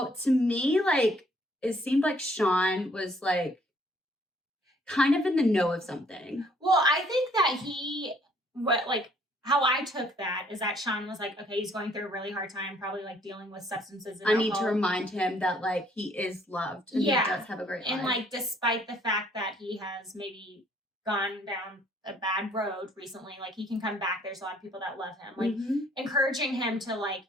to me, like, it seemed like Sean was like kind of in the know of something. Well, I think that how I took that is that Sean was like, okay, he's going through a really hard time, probably like dealing with substances and I need to alcohol. remind him that like he is loved and Yeah. he does have a great life. And like, despite the fact that he has maybe gone down a bad road recently, like he can come back. There's a lot of people that love him. Like encouraging him to like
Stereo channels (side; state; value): both; normal; correlation 0.62